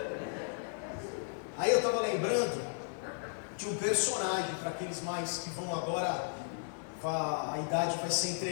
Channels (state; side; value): silent; right; 55 dB below the other